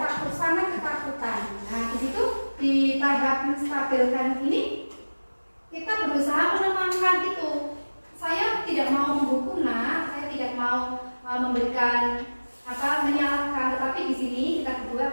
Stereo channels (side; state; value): both; inverted; correlation -1.00